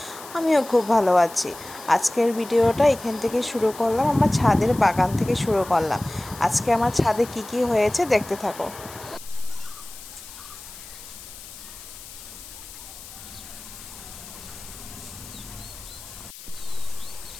আমিও খুব ভালো আছি। আজকের ভিডিওটা এখান থেকে শুরু করলাম, আমার ছাদের বাগান থেকে শুরু করলাম। আজকে আমার ছাদে কি কি হয়েছে দেখতে থাকো।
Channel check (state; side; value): noise; left; hiss, 16 dB below the sound